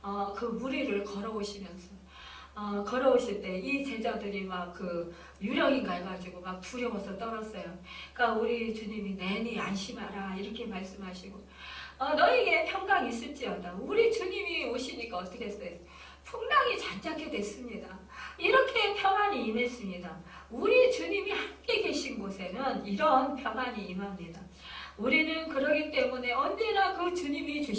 그 무리를 걸어오실 때 이 제자들이 막 그 유령인가 해가지고 막 두려워서 떨었어요. 그러니까 우리 주님이 내니 안심하라 이렇게 말씀하시고 너에게 평강이 있을지어다. 우리 주님이 오시니까 어떻게 했어요? 풍랑이 잔뜩게 됐습니다. 이렇게 평안이 임했습니다. 우리 주님이 함께 계신 곳에는 이런 평안이 임합니다. 우리는 그러기 때문에 언제나 그 주님이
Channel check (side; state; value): both; identical; correlation 1.00